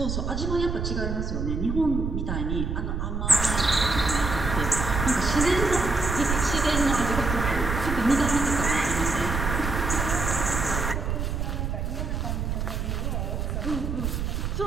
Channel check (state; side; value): noise; right; rumble, 2 dB below the sound